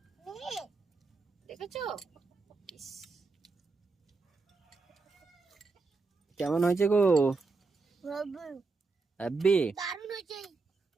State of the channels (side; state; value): left; quieter; 4.1 dB